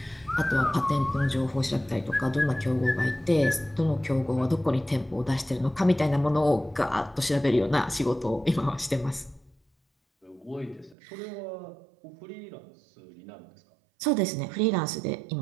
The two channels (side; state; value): left; drops out; at 11.0 s